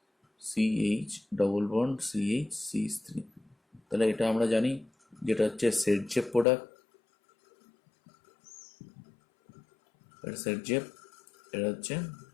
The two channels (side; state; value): right; drops out; at 6.5 s